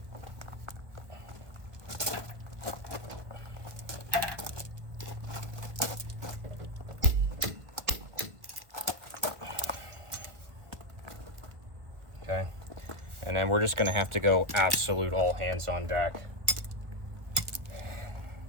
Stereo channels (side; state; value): left; late; 1.5 ms